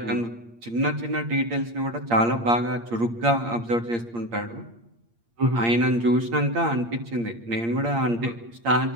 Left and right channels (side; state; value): left; late; 8.6 ms